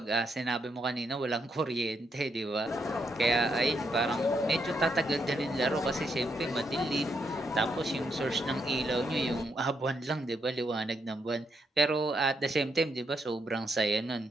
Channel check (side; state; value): both; normal; correlation 0.79